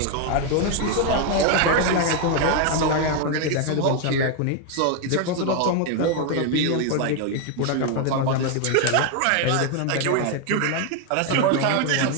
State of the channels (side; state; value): both; different; correlation 0.01